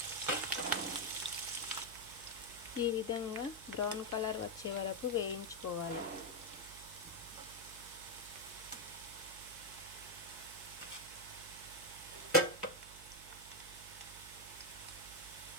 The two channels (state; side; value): noise; right; hum, 16 dB below the sound